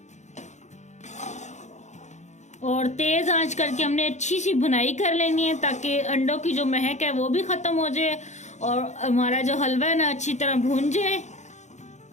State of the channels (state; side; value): late; right; 0.34 ms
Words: और तेज आंच करके हमने अच्छी सी भुनाई कर लेनी है ताकि अंडों की जो महक है वो भी खत्म हो जाए और हमारा जो हलवा है ना अच्छी तरह भून जाए।